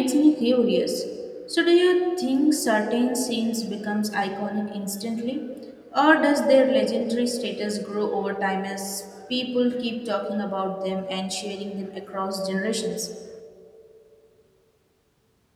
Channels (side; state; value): both; identical; correlation 1.00